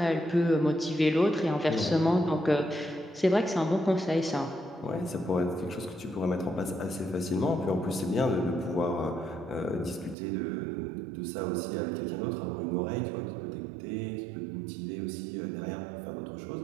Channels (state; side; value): drops out; left; at 10.2 s